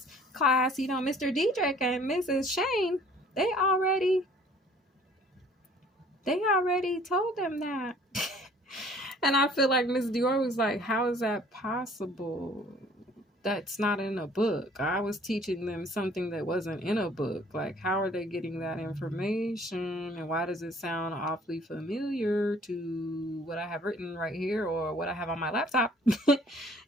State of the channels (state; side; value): normal; both; correlation 0.55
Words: class, Mr. Diedrich and Mrs. Shane, they already told them that. And I feel like Miss Dior was like, how is that possible? That's not in a book. I was teaching them something that wasn't in a book. Like, how are they getting that information? And why does it sound awfully familiar to what I have written right here or what I have on my laptop?